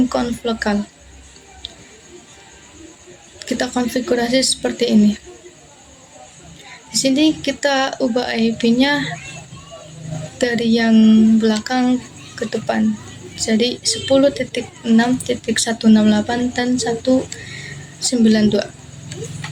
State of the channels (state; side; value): identical; both; correlation 1.00